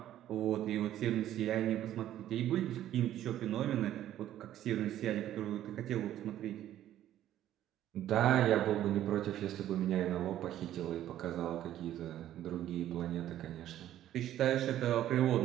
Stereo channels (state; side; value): quieter; left; 12.3 dB